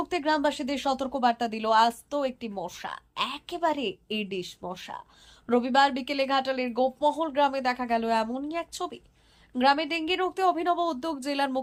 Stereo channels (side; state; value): both; identical; correlation 1.00